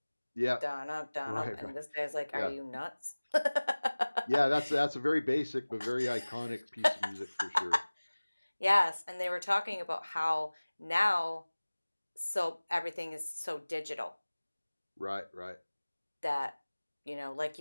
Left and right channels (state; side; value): inverted; both; correlation -1.00